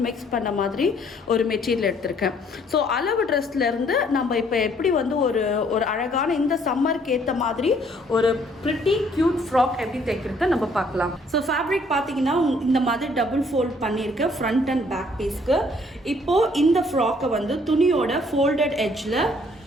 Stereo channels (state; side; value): normal; both; correlation 0.63